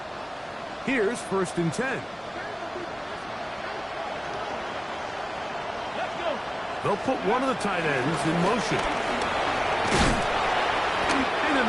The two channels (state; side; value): identical; both; correlation 1.00